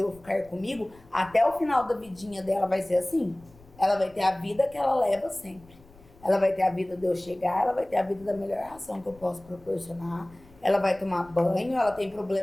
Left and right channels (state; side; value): noise; left; rumble, 25 dB below the sound